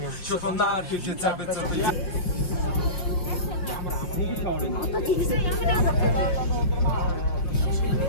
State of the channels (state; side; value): late; right; 5.6 ms